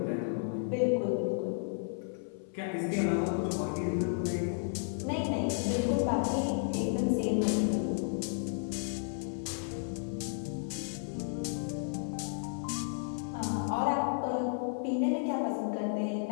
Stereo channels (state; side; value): silent; right; 56 dB below the other